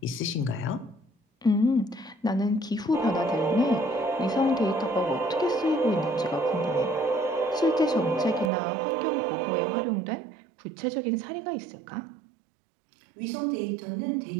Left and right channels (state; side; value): drops out; left; at 8.5 s